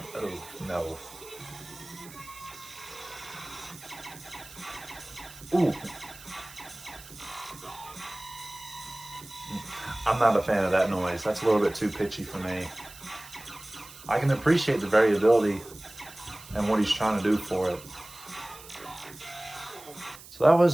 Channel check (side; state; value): right; noise; hiss, 18 dB below the sound